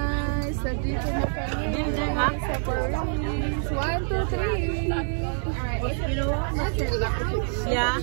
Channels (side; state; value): left; silent; 61 dB below the other